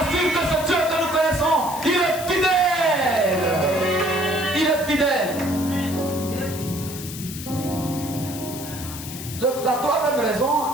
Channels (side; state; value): left; noise; hiss, 11 dB below the sound